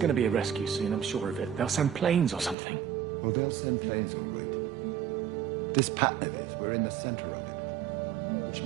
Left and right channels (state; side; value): drops out; left; at 2.6 s